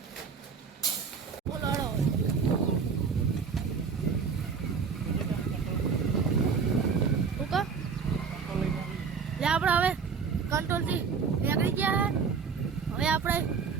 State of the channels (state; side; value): quieter; left; 5.9 dB